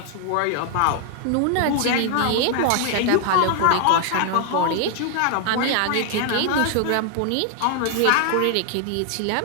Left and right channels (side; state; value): both; different; correlation 0.00